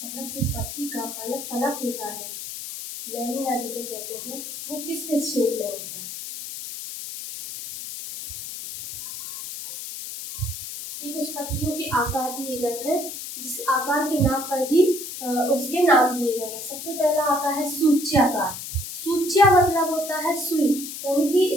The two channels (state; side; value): noise; left; hiss, 8 dB below the sound